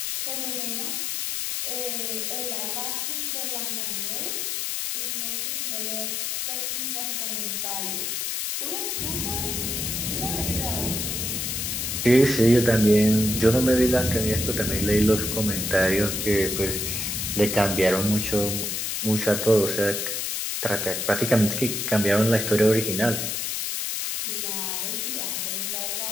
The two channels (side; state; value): left; noise; hiss, 1 dB below the sound